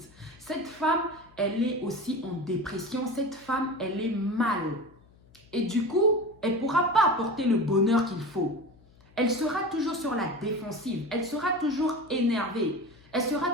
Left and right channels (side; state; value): left; noise; hum, 28 dB below the sound